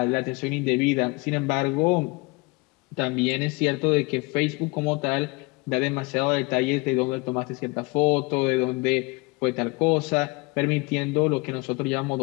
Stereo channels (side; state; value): right; quieter; 26.7 dB